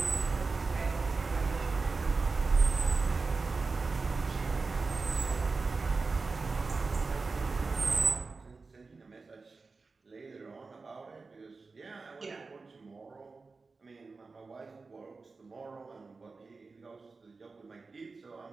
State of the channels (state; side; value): quieter; left; 4.1 dB